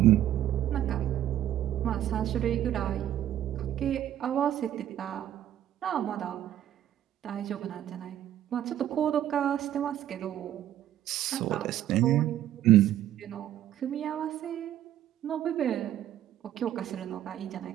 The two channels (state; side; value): quieter; left; 11.9 dB